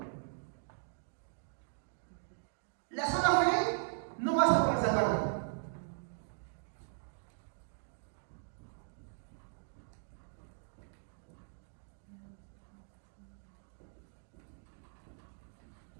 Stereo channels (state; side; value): silent; left; digital silence